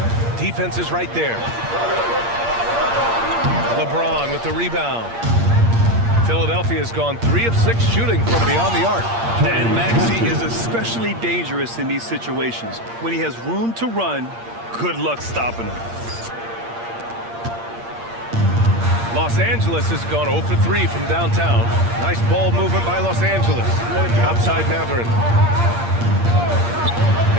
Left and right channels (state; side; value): late; left; 8.6 ms